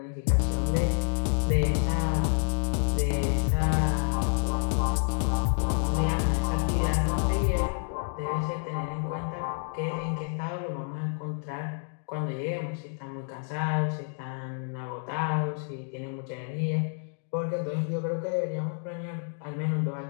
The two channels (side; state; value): right; silent; 57 dB below the other